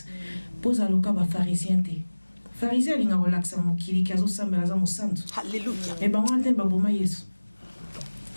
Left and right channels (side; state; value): both; inverted; correlation -1.00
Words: pose à loka ba pharisien te pharisien linga relaxa mukili kazo sambela za musantu haleluya e ba wante ba boma yesu